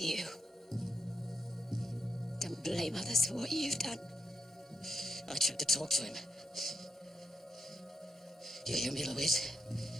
Don't blame others for what you've done. I tried to talk to him. You hear me, Louise?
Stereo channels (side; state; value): both; normal; correlation 0.84